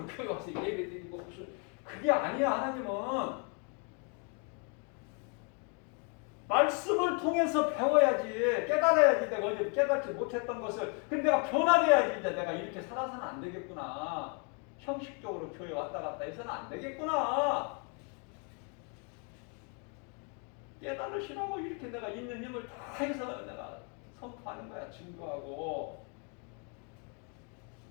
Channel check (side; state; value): right; quieter; 37.8 dB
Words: 교회 와서 예배드리고 무슨 그게 아니야. 하나님은 말씀을 통해서 배워야지 깨달아야지. 내가 어제 깨닫지 못했던 것을 근데 내가 변화돼야지. 이제 내가 이렇게 살아서는 안 되겠구나. 형식적으로 교회 왔다 갔다 해서는 안 되겠구나. 깨달으시라고 이렇게 내가 있는 힘을 다 해서 내가 선포하는 거야. 증거하고.